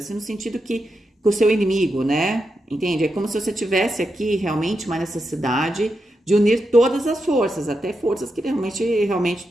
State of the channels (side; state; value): both; normal; correlation 0.86